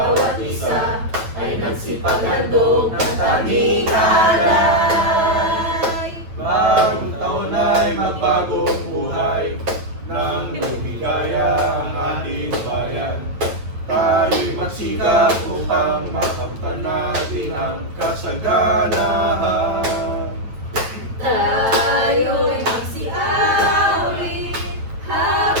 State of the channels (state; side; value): late; left; 8.9 ms